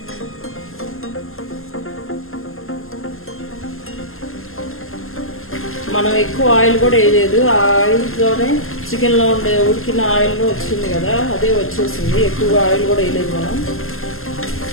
మనం ఎక్కువ ఆయిల్ కూడా వేయలేదు, ఆ ఆయిల్తోనే చికెన్లో ఉండే ఉడికిన ఆయిల్ వచ్చింది కదా, అదే వచ్చేసింది. ఎక్కువగా ఆయిల్ కూడా వేయలేదు మనం.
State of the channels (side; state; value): right; late; 0.61 ms